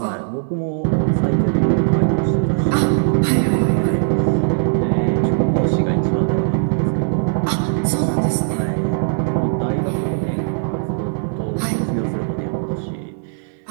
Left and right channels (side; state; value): left; silent; digital silence